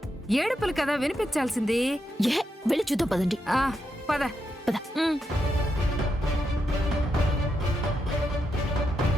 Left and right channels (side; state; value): both; normal; correlation 0.84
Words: ఏడుపులు కదా వినిపించాల్సింది. వెళ్ళి చూద్దాం పదండి. పద పద.